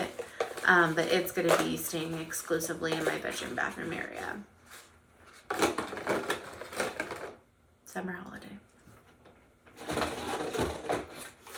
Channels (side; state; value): both; identical; correlation 1.00